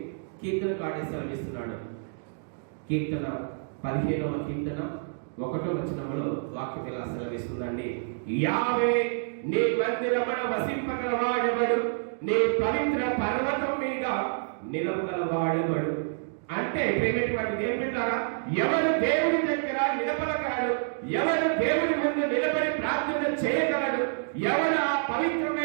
కీర్తనకారుడు సెలవిస్తున్నాడు. కీర్తన 15వ కీర్తన 1వ వచనంలో వాక్యం ఇలా సెలవిస్తుందండి. యావే నీ మందిరమున వసింపగలవాడెవడు? నీ పవిత్ర పర్వతం మీద నిలవగలవాడెవడు? అంటే ప్రేమటువంటిది ఏం పెట్టారా? ఎవరు దేవుడి దగ్గర నిలబడగలడు? ఎవరు దేవుడి ముందు నిలబడి ప్రార్థన చేయగలడు? ఎవరు ఆ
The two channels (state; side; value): silent; left; digital silence